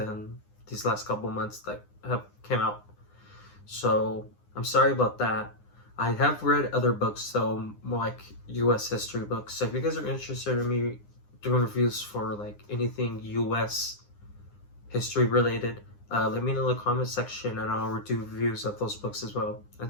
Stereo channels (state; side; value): late; right; 9.8 ms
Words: these last couple months that have came out. So I'm sorry about that. I have read other books, so more like U.S. history books. So if you guys are interested in me doing reviews for like anything U.S. history related, let me know in the comment section, and I'll do reviews of those books as well.